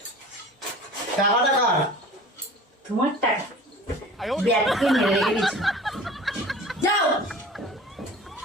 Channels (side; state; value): both; normal; correlation 0.40